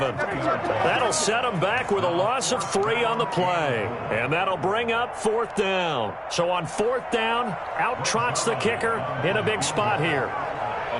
That'll set them back with a loss of 3 on the play. And that'll bring up 4th down. So on 4th down, out trots the kicker in a big spot here.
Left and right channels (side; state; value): both; identical; correlation 1.00